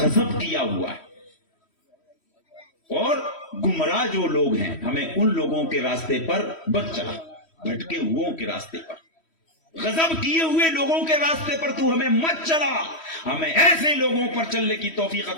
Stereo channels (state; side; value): late; right; 3.1 ms